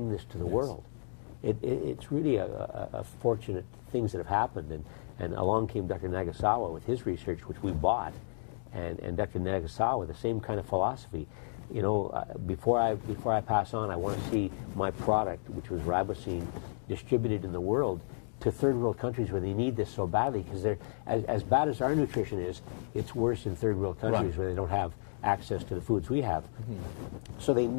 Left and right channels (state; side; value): silent; right; digital silence